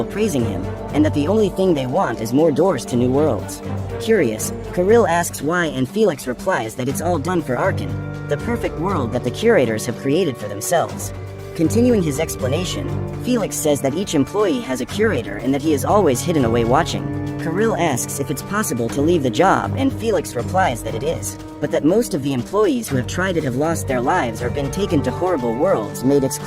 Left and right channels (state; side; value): identical; both; correlation 1.00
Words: praising him, and that the only thing they want is more doors to new worlds. Curious, Kirill asks why and Felix replies that it's all done for Arkan, the perfect world that the curators have created for themselves. Continuing his explanation, Felix says that each employee has a curator and that he is always hidden away watching. Kirill asks if it's possible to leave the job and Felix replies that it is, but that most of the employees who have tried it have lost their lives or been taken to horrible worlds made